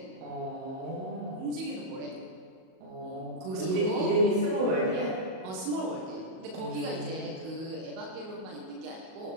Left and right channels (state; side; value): late; left; 38 ms